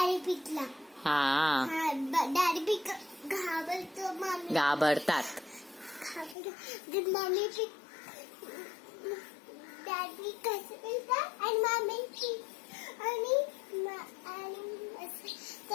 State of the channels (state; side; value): drops out; right; at 6.4 s